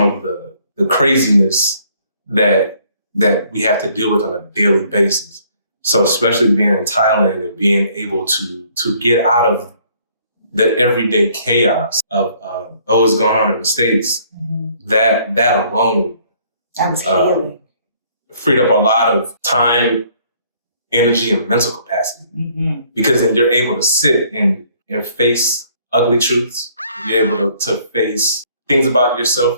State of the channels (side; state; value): both; inverted; correlation -0.62